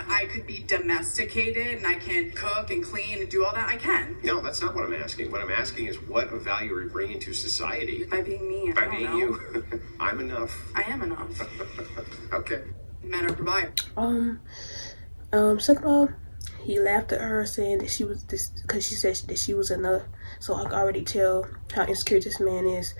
I could be domesticated and I can cook and clean and do all that, I can. No, that's not what I'm asking. What I'm asking is what of value are you bringing to society? By being me, By being you. I'm enough. I am enough. Okay. Men are providers. Second of all, he laughed at her saying that she was this because she said that she was enough. So I can already tell how insecure this man is,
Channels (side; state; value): both; inverted; correlation -1.00